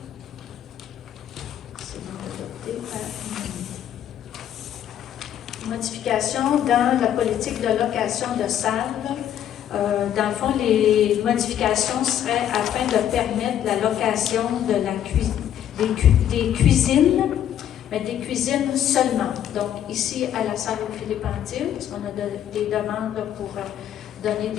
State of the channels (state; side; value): quieter; right; 10.5 dB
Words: C'est donc adopté à l'unanimité. Modification dans la politique de location de salles. Dans le fond, les modifications seraient afin de permettre la location de des cuisines, mais des cuisines seulement. Donc, ici, à la salle Philippe Antil, parce qu'on a des demandes pour donner